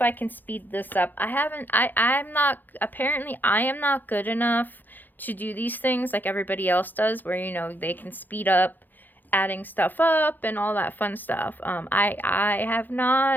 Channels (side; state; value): right; late; 0.087 ms